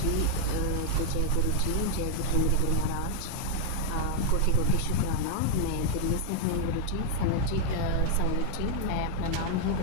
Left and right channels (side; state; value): both; different; correlation 0.00